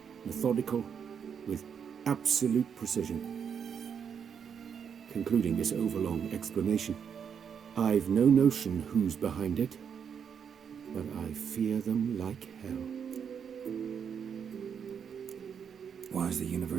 methodical, with absolute precision. Concluding this overlong explanation, I've no notion who's behind it, but I fear them like hell. Why is the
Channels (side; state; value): left; quieter; 7.4 dB